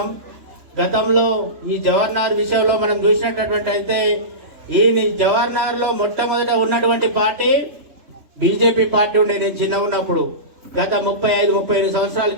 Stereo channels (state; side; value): late; left; 3.4 ms